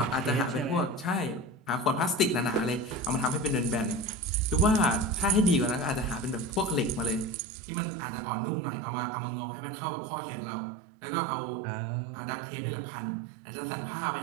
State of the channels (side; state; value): left; drops out; at 7.4 s